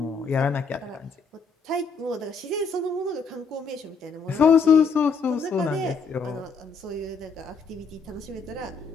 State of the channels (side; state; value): right; quieter; 4.8 dB